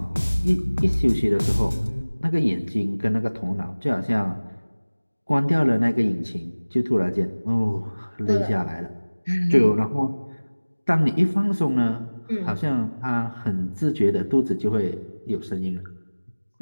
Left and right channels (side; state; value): both; inverted; correlation -1.00